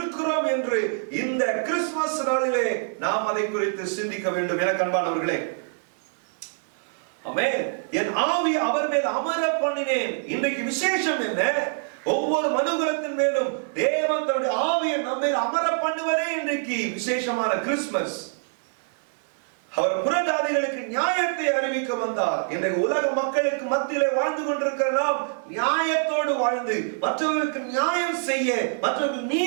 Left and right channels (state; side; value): silent; left; 59 dB below the other